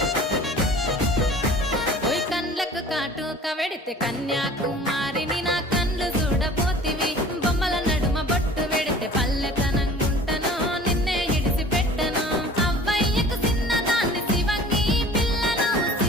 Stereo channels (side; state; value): both; normal; correlation 0.45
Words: ఓయ్ కండ్లకు కాటుక వెడితే కన్యాకుమారిని నా కండ్లు చూడపోతివి బొమ్మల నడుమ బొట్టు వెడితే పల్లెతనంగుంటను నిన్నే ఇడిసి పెట్టను అవ్వయ్యకు చిన్నదాన్ని శివంగి పిల్లను